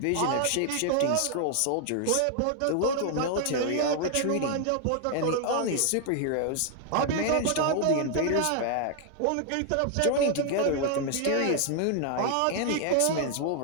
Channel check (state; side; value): different; both; correlation 0.00